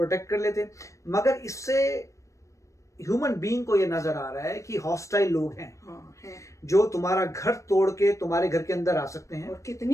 कर लेते। मगर इससे ह्यूमन बीइंग को ये नजर आ रहा है कि हॉस्टाइल लोग हैं, जो तुम्हारा घर तोड़ के तुम्हारे घर के अंदर आ सकते हैं। और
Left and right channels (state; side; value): late; right; 0.15 ms